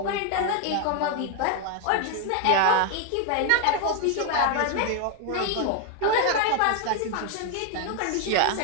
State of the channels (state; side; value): different; both; correlation 0.01